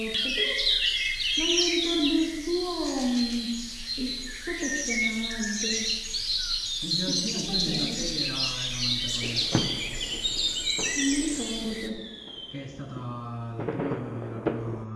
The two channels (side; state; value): both; identical; correlation 1.00